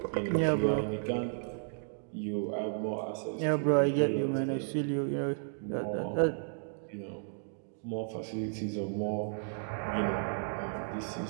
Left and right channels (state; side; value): silent; left; digital silence